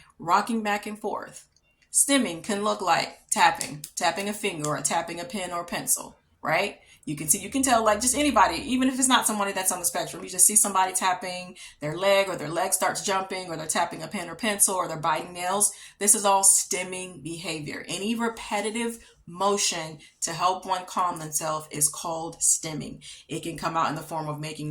rocking back and forth. Stimming can look like tapping a finger or tapping a pen or pencil, right? You can tell like just anybody, even if it's not somebody that's on the spectrum, you just see somebody tapping their leg or their leg starts jumping or they're tapping a pen or pencil or they're biting nails. This is all stimming behavior. Any repetitive motion to help one calm themselves is called stimming. It can come out in the form of making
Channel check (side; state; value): both; identical; correlation 1.00